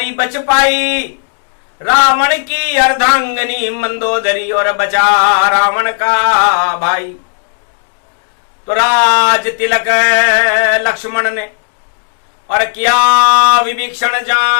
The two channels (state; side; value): silent; right; digital silence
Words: बच पाई, रावण की अर्धांगनी मंदोदरी, और बचा रावण का भाई। तो राज तिलक लक्ष्मण ने और किया विभीषण